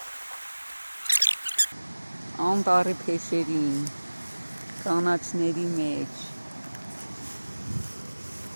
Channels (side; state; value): both; inverted; correlation -1.00